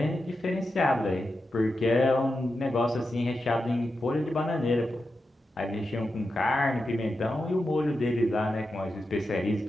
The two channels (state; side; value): normal; both; correlation 0.89